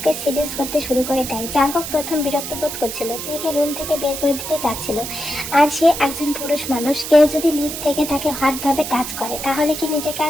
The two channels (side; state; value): right; noise; hiss, 7 dB below the sound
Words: সিডিউস করতে শুরু করে দেয়। জাঙ্গুক প্রথম বিরক্ত বোধ করছিল, তেকে রুম থেকে বের করে দিতে যাচ্ছিল। আর সে একজন পুরুষ মানুষ, কেউ যদি নিজ থেকে তাকে হটভাবে টাচ করে তাহলে কি নিজেকে